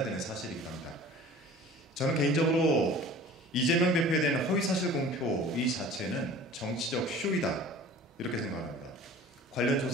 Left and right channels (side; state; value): both; normal; correlation 0.44